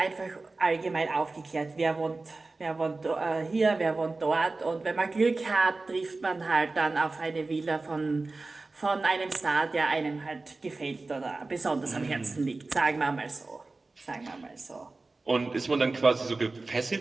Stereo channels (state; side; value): quieter; left; 3.5 dB